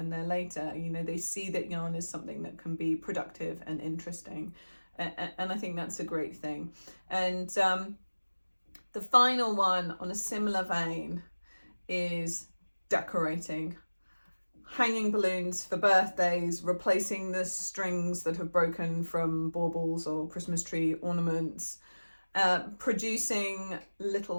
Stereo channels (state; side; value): inverted; both; correlation -1.00